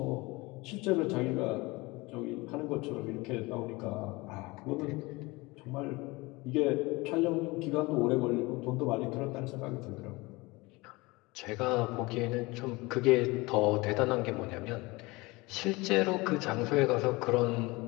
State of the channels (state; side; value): quieter; right; 23.3 dB